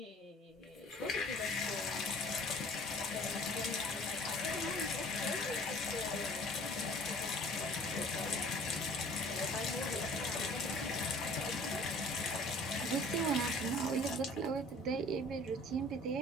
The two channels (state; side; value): normal; both; correlation 0.50